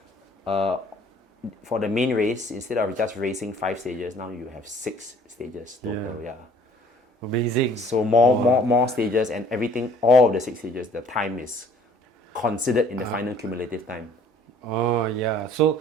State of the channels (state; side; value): normal; both; correlation 0.55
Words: for the main race, instead of just racing 5 stages, now you have 6 stages total. Yeah. Amazing. So more stages, and everything, all of the 6 stages, the time is considered in the final cumulative time. Oh yeah. So